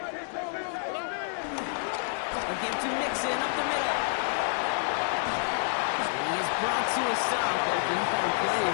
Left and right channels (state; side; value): silent; right; 59 dB below the other